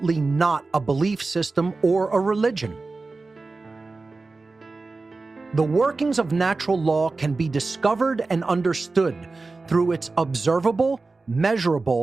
not a belief system or a religion. The workings of natural law can be discovered and understood through its observable,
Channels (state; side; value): quieter; left; 3.7 dB